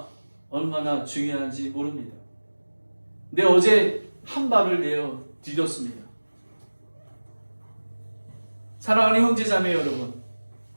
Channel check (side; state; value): both; inverted; correlation -1.00